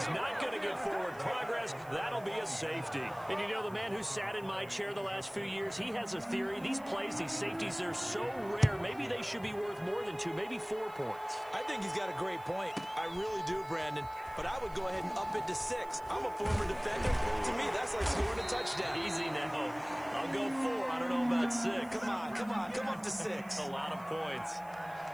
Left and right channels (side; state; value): right; noise; hiss, 24 dB below the sound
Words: not going to get forward progress. That'll be a safety. And you know, the man who sat in my chair the last few years, he has a theory. These plays, these safeties, they're so rare. Maybe they should be worth more than 2, maybe 4 points. I think he's got a great point. I really do, Brandon. But I would go ahead and up it to 6. I'm a former defender. To me, that's like scoring a touchdown. Easy now. I'll go 4. I don't know about 6. Come up to 6. A lot of points.